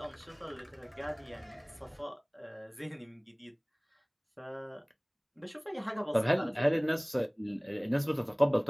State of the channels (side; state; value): both; identical; correlation 1.00